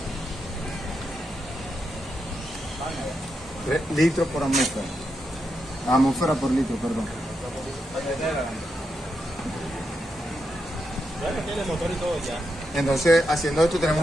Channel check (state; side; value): normal; both; correlation 0.84